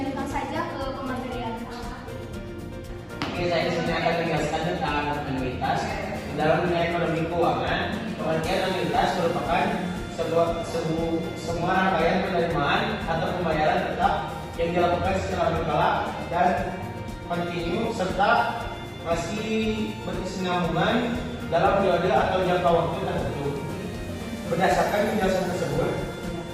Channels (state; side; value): identical; both; correlation 1.00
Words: saja ke pematerian. Oke, saya di sini akan menjelaskan tentang anuitas. Dalam dunia ekonomi keuangan, pengertian anuitas merupakan semua rangkaian penerimaan atau pembayaran tetap yang dilakukan secara berkala dan kontinu serta masih berkesinambungan dalam periode atau jangka waktu tertentu. Berdasarkan penjelasan tersebut,